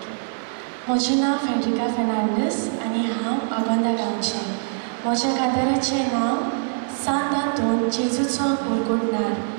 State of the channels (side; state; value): left; silent; 63 dB below the other